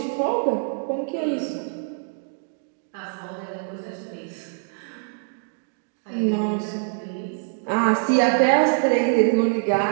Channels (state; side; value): silent; left; digital silence